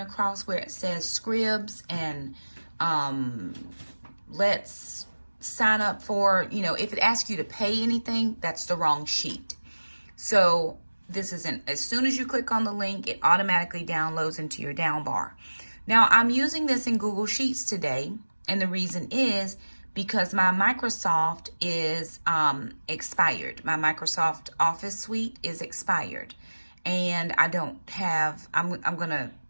where it says scribs and let's sign up for, if it asks you to pay anything, that's the wrong sheet. So this isn't, as soon as you click on the link, it automatically downloads into your down bar. Now I'm using this in Google Sheets today, and the reason is because my Microsoft is expired. My Microsoft Office suite is expired, and I don't have, I'm gonna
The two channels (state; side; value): inverted; both; correlation -1.00